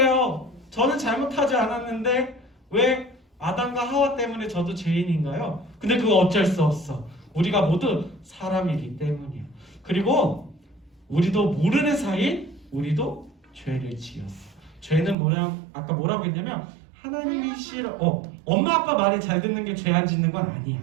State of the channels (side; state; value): left; drops out; at 15.2 s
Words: 저는 잘못하지 않았는데 왜 아담과 하와 때문에 저도 죄인인가요? 근데 그거 어쩔 수 없어. 우리가 모두 사람이기 때문이야. 그리고 우리도 모르는 사이 우리도 죄를 지었어. 죄는 아까 뭐라고 했냐면 하나님이 싫어. 엄마 아빠 말을 잘 듣는 게 죄 안 짓는 건 아니야.